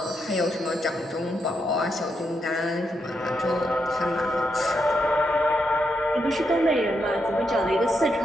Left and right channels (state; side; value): normal; both; correlation 0.81